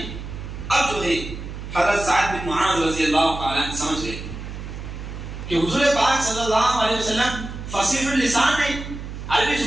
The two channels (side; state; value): right; noise; hum, 9 dB below the sound